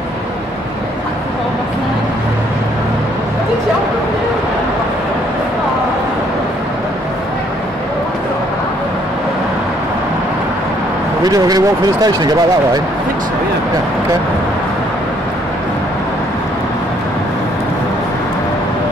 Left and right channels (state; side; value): normal; both; correlation 0.65